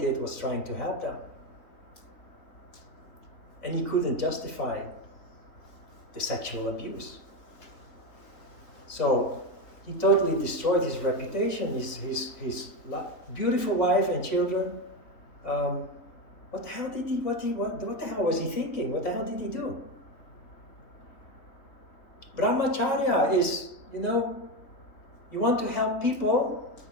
did was trying to help them. And he couldn't justify the sexual abuse. So he totally destroyed his reputation, his beautiful wife and children. What the hell did what the hell was he thinking? What the hell did he do? Brahmacharya is, you want to help people,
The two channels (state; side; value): late; right; 3.5 ms